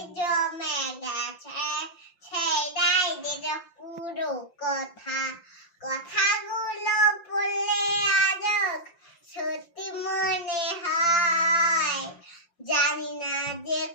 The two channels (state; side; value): late; right; 5.7 ms